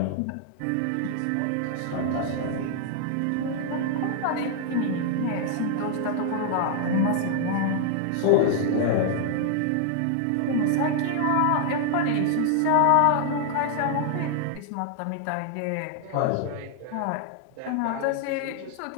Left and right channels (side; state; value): both; different; correlation -0.01